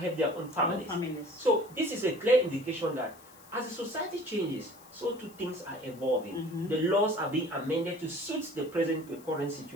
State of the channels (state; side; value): noise; left; hiss, 23 dB below the sound